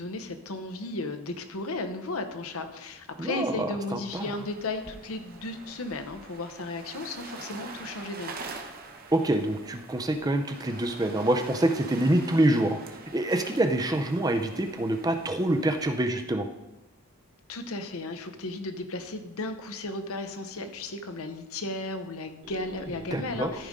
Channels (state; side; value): normal; both; correlation 0.61